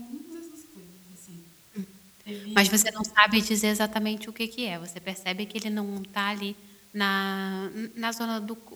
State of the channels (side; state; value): both; identical; correlation 1.00